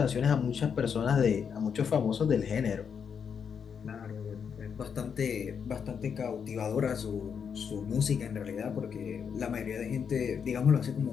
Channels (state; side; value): quieter; right; 7.0 dB